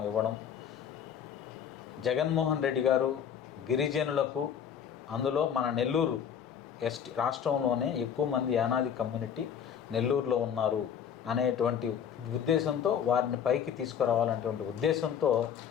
ఇవ్వడం, జగన్మోహన్ రెడ్డి గారు గిరిజనులకు, అందులో మన నెల్లూరు ఎస్టీ రాష్ట్రంలోనే ఎక్కువ మంది యానాది కమ్యూనిటీ నెల్లూరులో ఉన్నారు అనేటువంటి ఉద్దేశంతో, వారిని పైకి తీసుకురావాలనేటువంటి ఉద్దేశంతో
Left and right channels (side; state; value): right; quieter; 8.3 dB